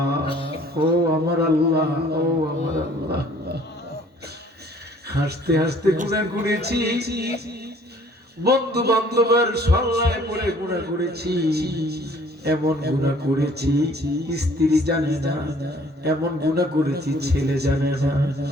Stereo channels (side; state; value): both; normal; correlation 0.56